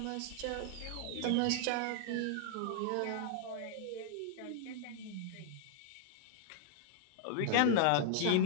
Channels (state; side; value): different; both; correlation 0.00